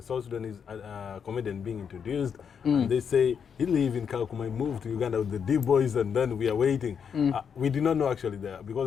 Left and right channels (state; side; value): quieter; right; 7.1 dB